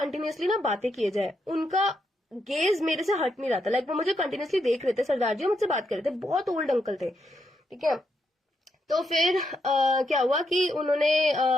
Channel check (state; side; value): normal; both; correlation 0.80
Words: ना बातें किए जाए, उनका गेज मेरे से हट नहीं रहा था, लाइक वो मुझे कंटिन्यूअसली देख रहे थे, सरदार जी मुझसे बात कर रहे थे, बहुत ओल्ड अंकल थे, ठीक है। तो फिर क्या हुआ कि उन्होंने